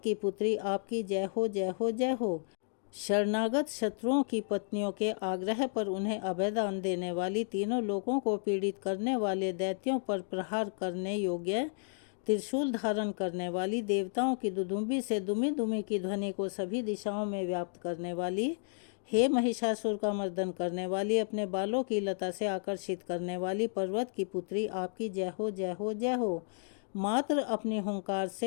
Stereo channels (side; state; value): right; silent; digital silence